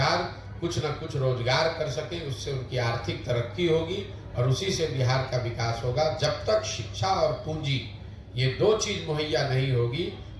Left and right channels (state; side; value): identical; both; correlation 1.00